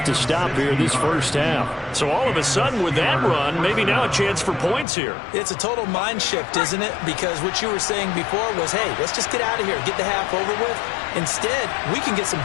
to stop here this first half. So all of a sudden with that run, maybe now a chance for points here. It's a total mind shift, isn't it? Because what you were saying before was, hey, let's just get out of here, get the half over with. Instead, we can get some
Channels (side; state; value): right; drops out; at 4.9 s